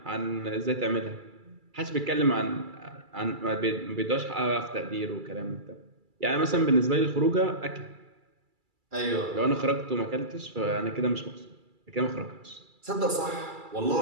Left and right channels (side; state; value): left; late; 2.3 ms